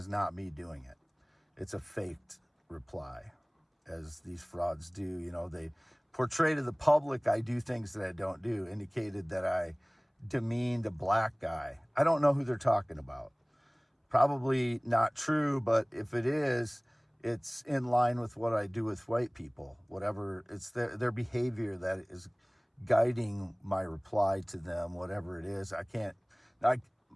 not me doing it. It's a faked reply, as these frauds do. They portray to the public I do things that I don't do, indicated that I demeaned a black guy. I don't know who they're talking about. Probably not true, but if it is, it's in line with what I do with white people. Whatever, it's their behavior that is guiding my reply to them, whatever it is. My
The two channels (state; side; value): identical; both; correlation 1.00